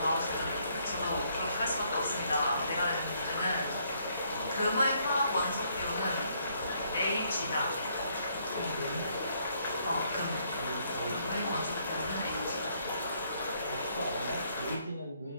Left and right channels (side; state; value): both; inverted; correlation -0.70